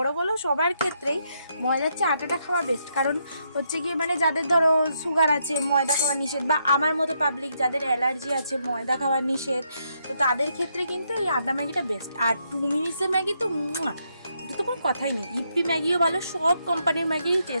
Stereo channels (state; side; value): inverted; both; correlation -0.77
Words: বলো সবার ক্ষেত্রেই ময়দার চেয়ে আটাটা খাওয়া বেস্ট। কারণ হচ্ছে গিয়ে মানে যাদের ধরো সুগার আছে, ময়দা খাওয়া নিষেধ, বা আমার মতো পাবলিক যাদের অ্যালার্জি আছে, ময়দা খাওয়া নিষেধ, তো তাদের ক্ষেত্রে কিন্তু এই আটা ম্যাগিটা বেস্ট। আর 2 মিনিটসের ম্যাগি তো তো কোনো কথাই নেই। ইপি ম্যাগিও ভালো, সব কোম্পানির ম্যাগিরই